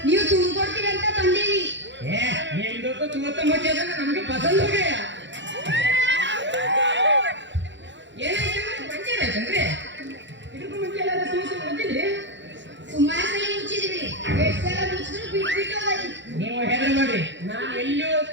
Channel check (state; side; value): late; left; 0.53 ms